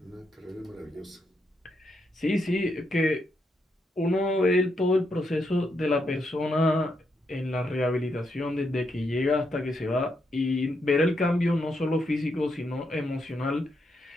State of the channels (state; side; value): normal; both; correlation 0.80